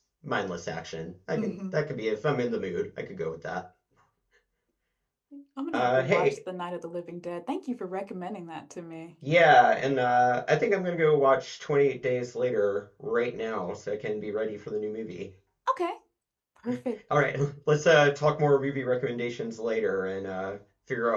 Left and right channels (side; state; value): both; identical; correlation 1.00